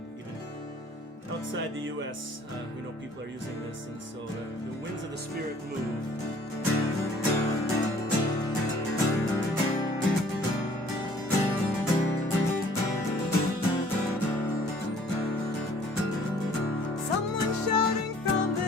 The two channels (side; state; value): both; normal; correlation 0.55